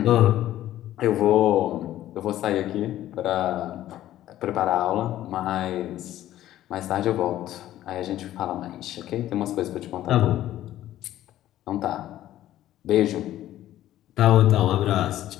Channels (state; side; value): quieter; right; 13.4 dB